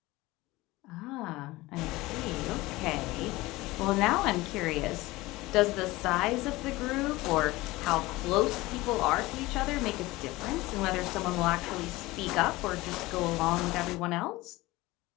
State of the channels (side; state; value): right; quieter; 20.0 dB